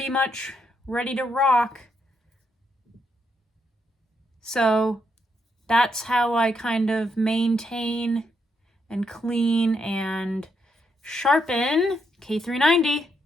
much ready to rock. So that's how I kind of maintain and clean and sharpen K390.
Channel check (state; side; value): normal; both; correlation 0.78